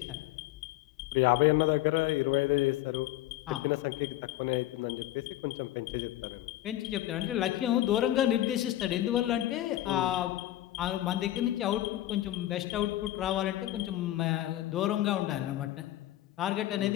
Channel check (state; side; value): quieter; right; 14.5 dB